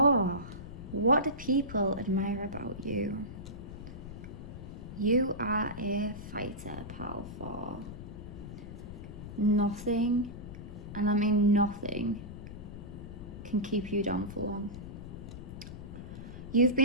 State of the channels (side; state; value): left; noise; rumble, 11 dB below the sound